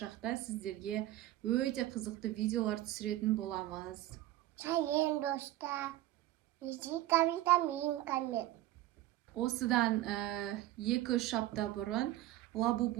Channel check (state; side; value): quieter; left; 15.1 dB